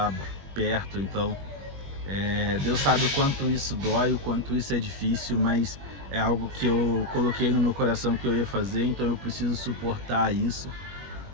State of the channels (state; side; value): late; left; 21 ms